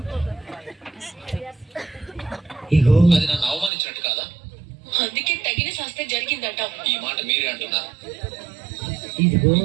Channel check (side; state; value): left; drops out; at 3.7 s